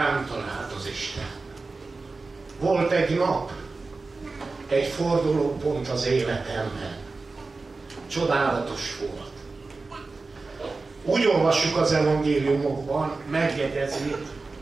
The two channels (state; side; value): quieter; left; 3.8 dB